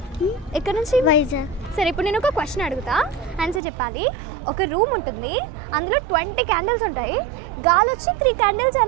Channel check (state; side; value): drops out; left; at 3.6 s